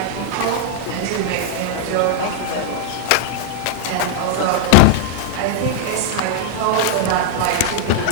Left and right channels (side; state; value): both; different; correlation -0.01